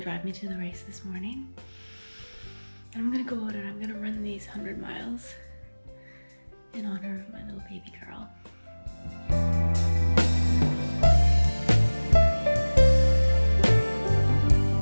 me to the race this morning. And I'm gonna go out and I'm gonna run these 100 miles in honor of my little baby girl.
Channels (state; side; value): inverted; both; correlation -1.00